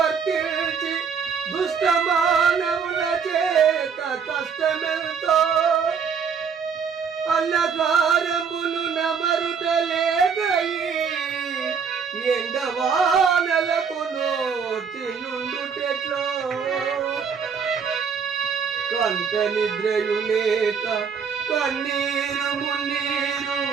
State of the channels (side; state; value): left; quieter; 6.4 dB